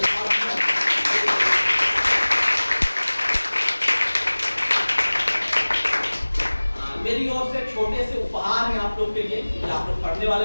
मेरी ओर से छोटे से उपहार है आप लोग के लिए, कि आप लोग पढ़ने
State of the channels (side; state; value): both; inverted; correlation -1.00